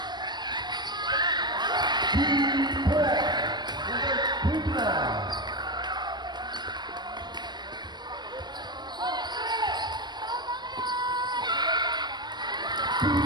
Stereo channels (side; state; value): left; late; 0.21 ms